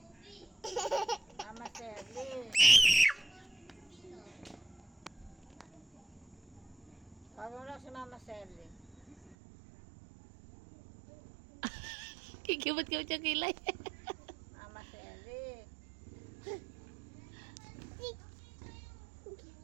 Mama said, Liz. Tawag mo lang si Mama Sally. Kikibot-kibot yung kilay. Mama Sally.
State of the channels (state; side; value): drops out; left; at 9.3 s